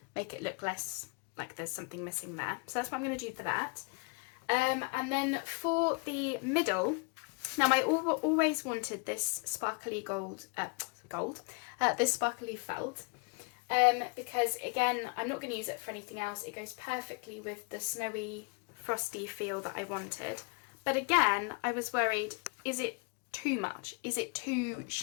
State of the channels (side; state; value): right; quieter; 34.7 dB